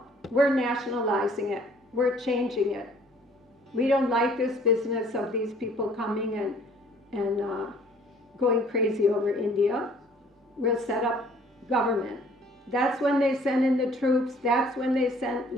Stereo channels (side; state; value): both; normal; correlation 0.56